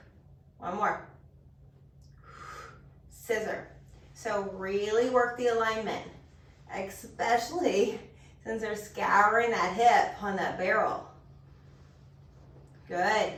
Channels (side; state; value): both; identical; correlation 1.00